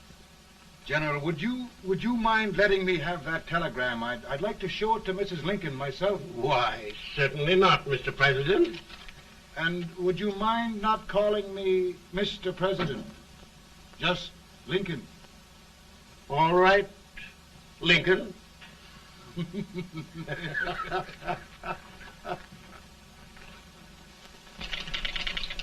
General, would you mind letting me have that telegram? I'd like to show it to Mrs. Lincoln myself. Why, certainly not, Mr. President. And would you mind not calling me Mr. President? Just Lincoln. All right, Lincoln.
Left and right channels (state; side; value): identical; both; correlation 1.00